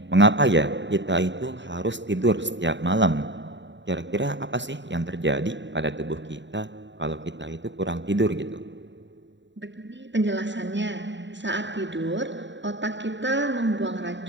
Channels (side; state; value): left; late; 0.53 ms